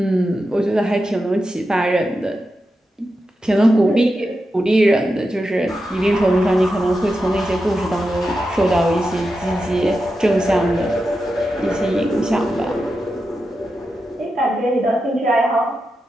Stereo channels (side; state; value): both; normal; correlation 0.89